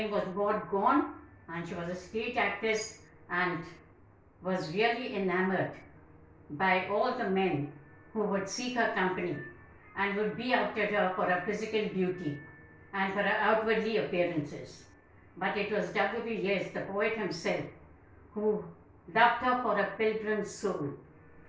was Maud Gonne, and she was a stage actress and was really enamored by all the men who would seek her company and would be after her for her physical beauty and for her outwardly appearances. But it was W.B. Yeats, the poet himself, who loved her for a pilgrim soul.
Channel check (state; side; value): identical; both; correlation 1.00